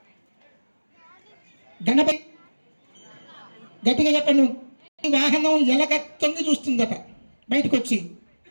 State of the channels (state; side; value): inverted; both; correlation -1.00